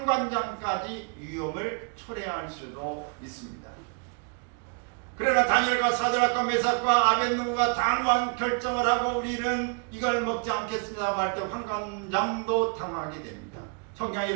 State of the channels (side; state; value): left; quieter; 38.0 dB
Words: 위험을 초래할 수도 있습니다. 그러나 다니엘과 사드락과 메삭과 아벳느고가 단호한 결정을 하고 우리는 이걸 먹지 않겠습니다 할 때 환관장도 당하게 됩니다. 성경이